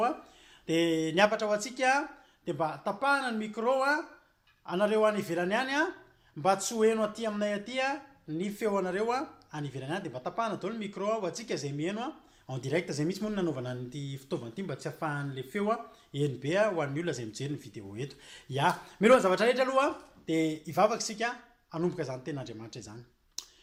dia niapatra ho antsika dia mba tapahana ny micro anareo any ivelany any mba tsy ho heno aty aminay aty ny feo anareo any ivelany any dia mba tapahana daholo ny micro ho antsika izay mihaino en direct izay misy moa nanaovana an'ity fitaovana ity mba tsy hafahan'le feo eny be ho an'ny olona izay mijery ny vidéo eto ya milohany zavatra rehetra aloha dia hivavaka isika hanomboka izany ten'Andriamanitra izany.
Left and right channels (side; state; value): both; identical; correlation 1.00